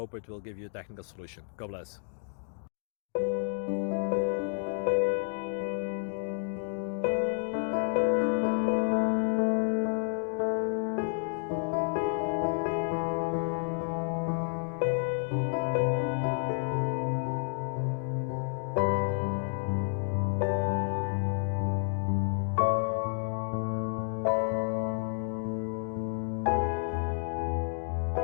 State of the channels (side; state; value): right; silent; 57 dB below the other